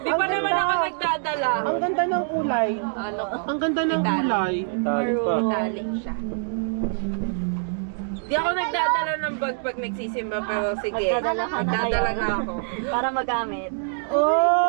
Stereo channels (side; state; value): left; silent; digital silence